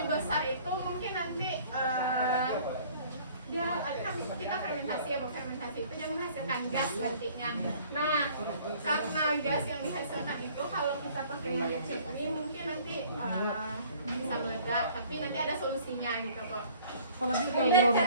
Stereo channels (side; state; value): both; inverted; correlation -0.53